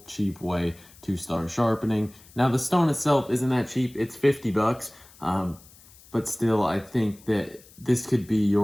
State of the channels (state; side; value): noise; left; hiss, 24 dB below the sound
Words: cheap way to start sharpening. Now, the stone itself isn't that cheap. It's 50 bucks, but still, I think that this could be